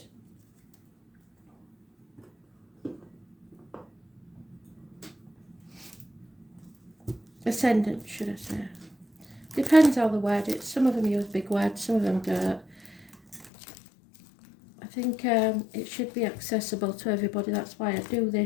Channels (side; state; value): right; drops out; at 13.5 s